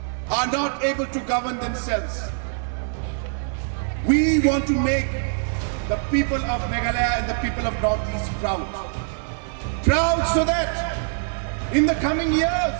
are not able to govern themselves. We want to make the people of Meghalaya and the people of Northeast proud. Proud so that in the coming years,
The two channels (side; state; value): left; silent; digital silence